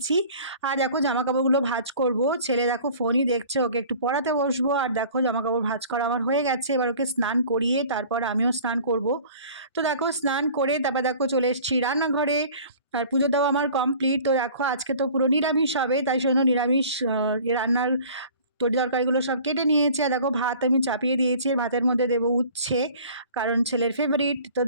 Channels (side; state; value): both; inverted; correlation -0.47